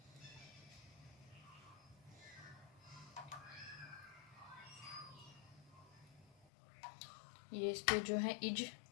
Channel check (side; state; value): right; drops out; at 6.5 s